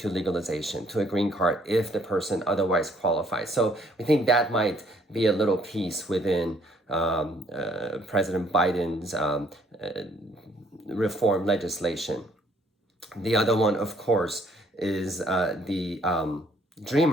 legalization, to a green card if the person otherwise qualifies. So we think that might be a little piece within President Biden's reform legislation. The other one, of course, is the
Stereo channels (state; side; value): normal; both; correlation 0.64